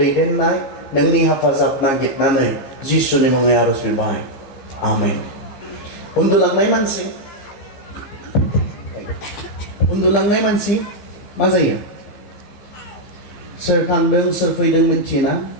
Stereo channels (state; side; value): late; right; 15 ms